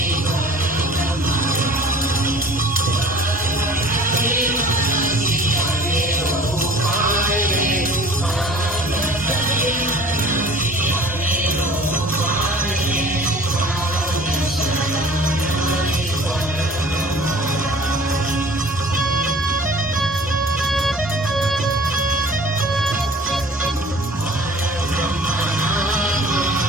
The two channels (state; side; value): normal; both; correlation 0.47